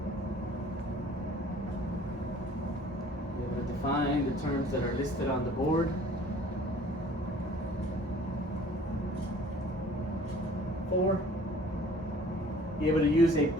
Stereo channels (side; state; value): both; normal; correlation 0.51